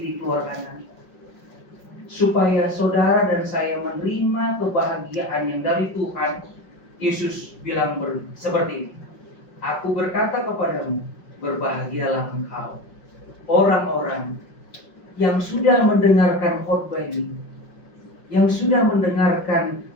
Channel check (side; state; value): right; late; 5.4 ms